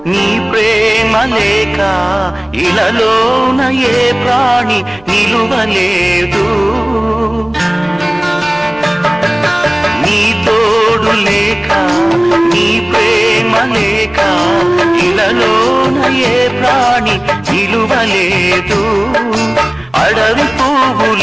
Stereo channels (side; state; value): right; noise; rumble, 28 dB below the sound